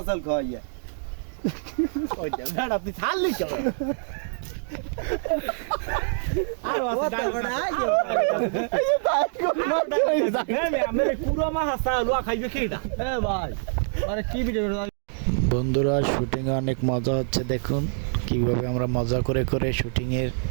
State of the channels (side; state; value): left; silent; digital silence